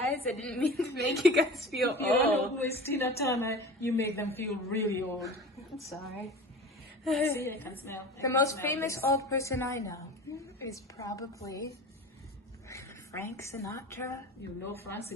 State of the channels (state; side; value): normal; both; correlation 0.35